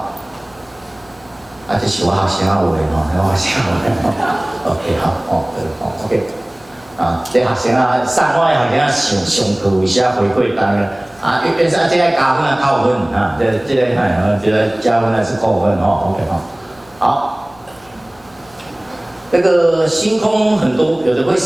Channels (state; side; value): noise; left; hum, 28 dB below the sound